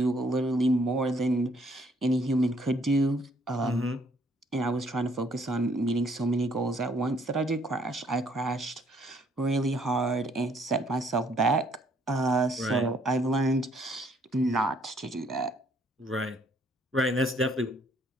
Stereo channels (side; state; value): both; normal; correlation 0.65